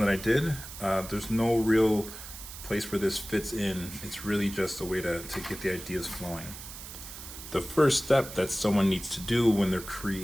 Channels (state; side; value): noise; right; hiss, 12 dB below the sound